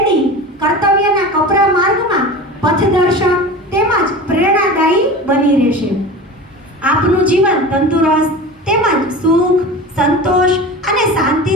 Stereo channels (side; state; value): both; normal; correlation 0.33